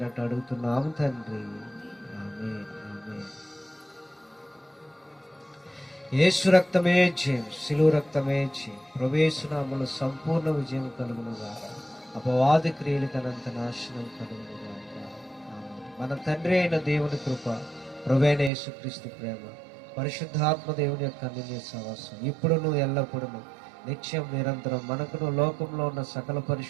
అడుగుతున్నాము తండ్రి. ఆమేన్, ఆమేన్. యేసు రక్తమే జయం, శిలువ రక్తమే జయం. ప్రభుయేసు నామములో సంపూర్ణ విజయం కలుగునుగా, అపవాది క్రియలకు అనంత నాశనం కలుగునుగా. మన తండ్రి అయిన దేవుని కృప, ప్రభువైన యేసుక్రీస్తు ప్రేమ, పరిశుద్ధాత్మ దేవుని యొక్క అన్యోన్య సహవాసం ఇప్పుడును ఎల్లప్పుడూ నిత్యం నిరంతరం మనకును లోకంలో ఉన్న సకల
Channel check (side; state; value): left; drops out; at 18.5 s